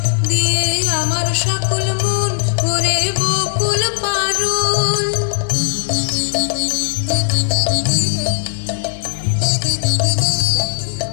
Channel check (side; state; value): right; silent; 68 dB below the other